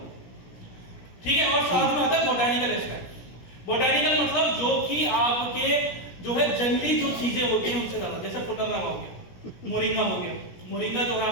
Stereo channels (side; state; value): right; late; 17 ms